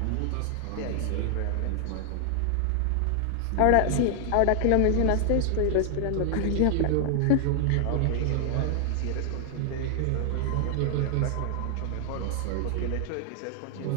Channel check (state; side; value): different; both; correlation 0.00